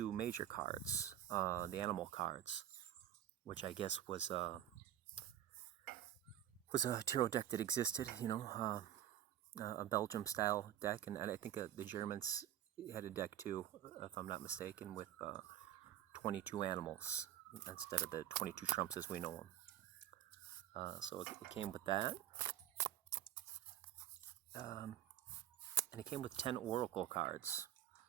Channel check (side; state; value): left; quieter; 11.4 dB